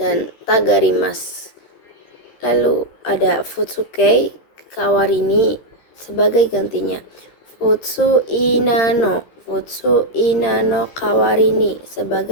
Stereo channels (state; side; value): late; right; 13 ms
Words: tagarimasu. Lalu ada futsuke kawarini, sebagai gantinya. Futsu inano kawarini,